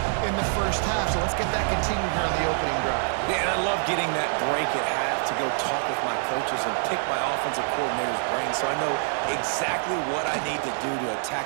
in the first half, so let's get that continued here on the opening drive. Yeah, and I love getting that break at half to go talk with my coaches and pick my offensive coordinator's brain so I know exactly what I need to do to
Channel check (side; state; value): left; silent; digital silence